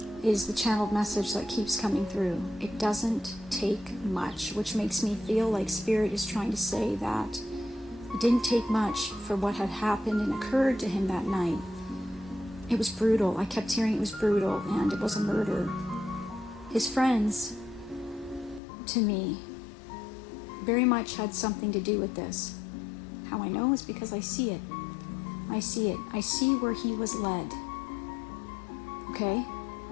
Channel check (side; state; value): right; drops out; at 18.6 s